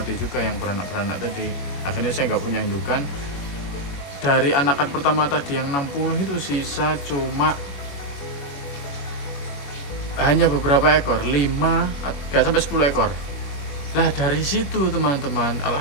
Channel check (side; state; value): right; late; 21 ms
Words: juga, yang beranak tadi. Akhirnya saya nggak punya indukan. Dari anakan pertama tadi yang 60 itu sisa cuma hanya beberapa ekor, 5 nggak sampai 10 ekor. Lah dari situ teman-teman,